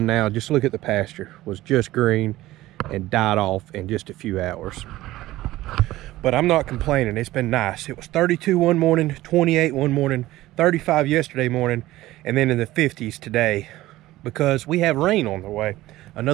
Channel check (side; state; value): left; quieter; 16.6 dB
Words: now. Just look at the pasture. It was just green and died off in just a few hours. But I'm not complaining. It's been nice. It was 32 one morning, 28 one morning, 35 yesterday morning, and then in the 50s today, because we have rain on the way.